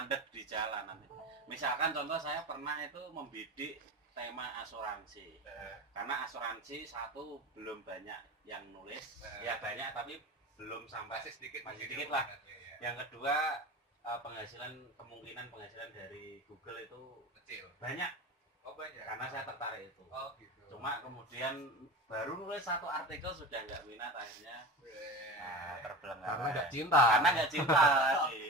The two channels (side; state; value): both; normal; correlation 0.29